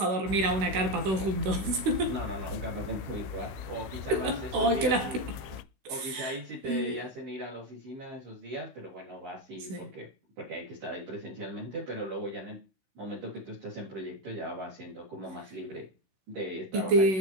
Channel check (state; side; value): late; left; 16 ms